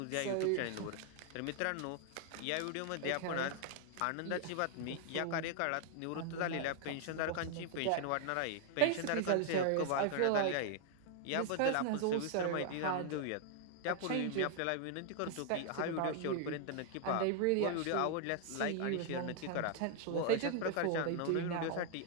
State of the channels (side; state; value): both; different; correlation 0.00